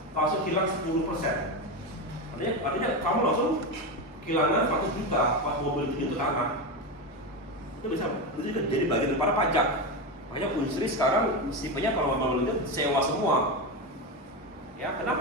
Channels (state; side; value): normal; both; correlation 0.16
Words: langsung hilang 10%. Artinya kamu langsung kehilangan 100 juta pas mobil itu jatuh tanah. Itu bisa jadi bagian daripada pajak. Makanya industri sekarang tipenya kalau mobil itu sewa semua. Ya,